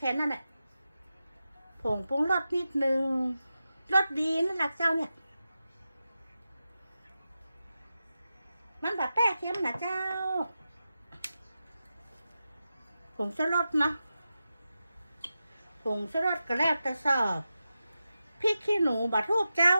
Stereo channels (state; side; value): inverted; both; correlation -0.91